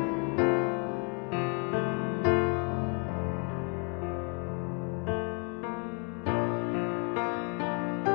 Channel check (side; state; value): right; quieter; 37.6 dB